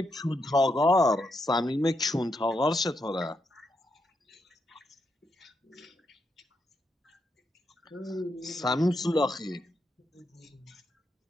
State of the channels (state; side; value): normal; both; correlation 0.81